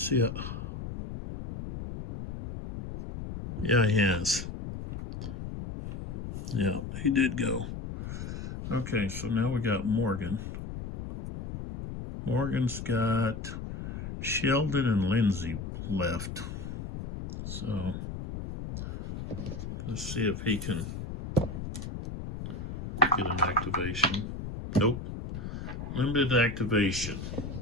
see. Yeah, he has. Yeah, he did go. Okay, so now we got Morgan. Morgan's got Sheldon and Lindsay left. So let's see if he can get an activation. Nope. Limited activation.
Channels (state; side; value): noise; left; rumble, 7 dB below the sound